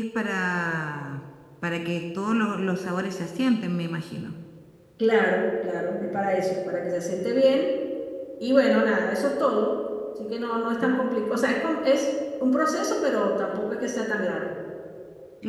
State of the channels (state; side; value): identical; both; correlation 1.00